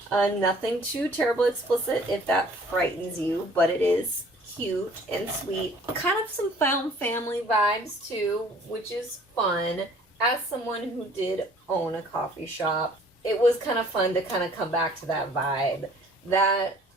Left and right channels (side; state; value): both; normal; correlation 0.54